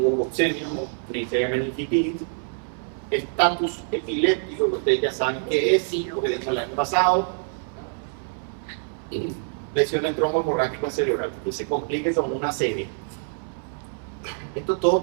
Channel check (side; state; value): left; silent; 62 dB below the other